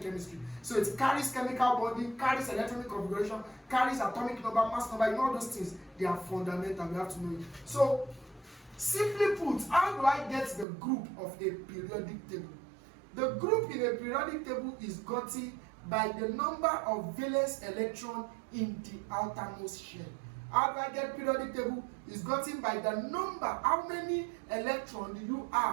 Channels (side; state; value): left; drops out; at 10.7 s